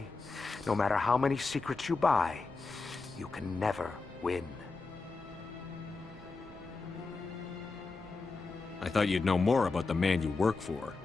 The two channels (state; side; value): quieter; right; 4.0 dB